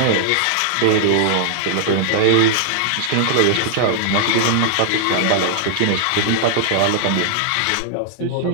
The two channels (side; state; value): both; different; correlation -0.01